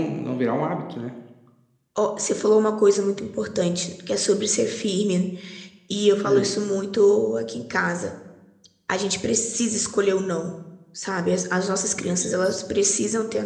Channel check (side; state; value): both; identical; correlation 1.00